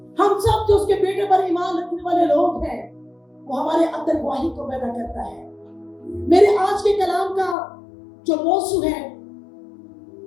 हम सब जो उसके बेटे पर ईमान रखने वाले लोग हैं वो हमारे अंदर गवाही को पैदा करता है। मेरे आज के कलाम का जो मौजू है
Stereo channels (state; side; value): drops out; right; at 7.6 s